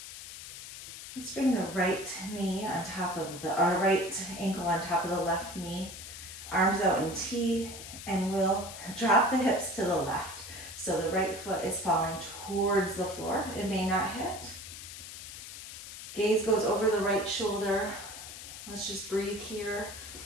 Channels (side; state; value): left; noise; hiss, 12 dB below the sound